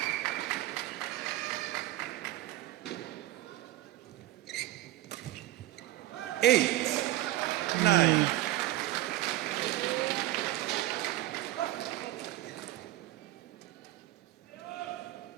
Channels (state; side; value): quieter; left; 15.7 dB